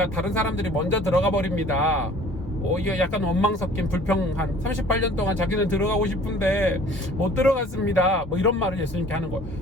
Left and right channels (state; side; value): normal; both; correlation 0.50